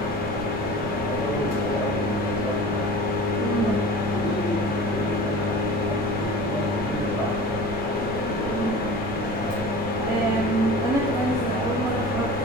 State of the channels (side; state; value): right; noise; rumble, 9 dB below the sound